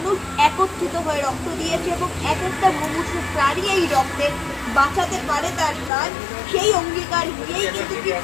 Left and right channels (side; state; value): right; drops out; at 5.9 s